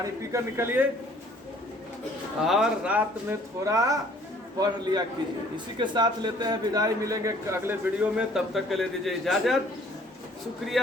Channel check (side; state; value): both; normal; correlation 0.57